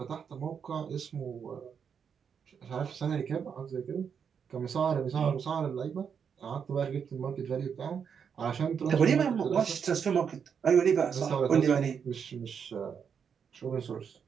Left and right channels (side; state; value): left; quieter; 7.0 dB